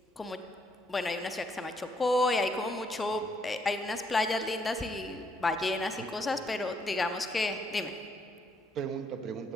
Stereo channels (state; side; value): normal; both; correlation 0.72